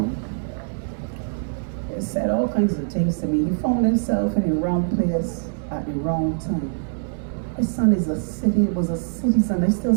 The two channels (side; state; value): left; silent; digital silence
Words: They said all kinds of things to me. He found himself in the wrong place at the wrong time. My son was a citizen. I still